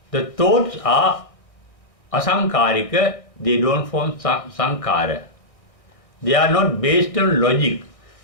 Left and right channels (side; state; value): right; late; 1.6 ms